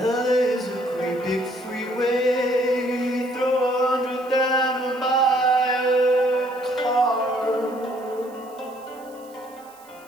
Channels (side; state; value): right; noise; hiss, 26 dB below the sound